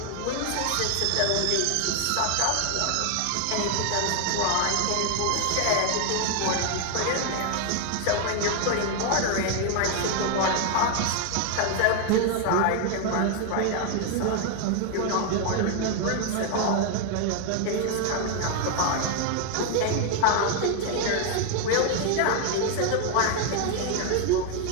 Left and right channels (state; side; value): different; both; correlation 0.01